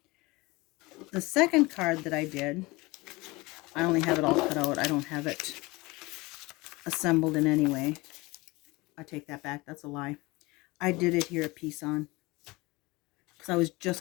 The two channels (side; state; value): right; quieter; 22.9 dB